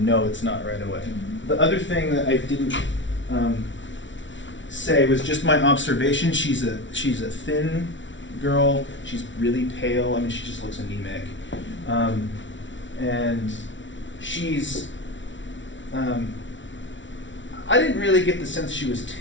know it's not right away. The other thing that I didn't say was just my observation. She's a thin girl. She's really pale. I mean, she just looks anemic, and she's. I didn't really get the sense she was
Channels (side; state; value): right; late; 0.55 ms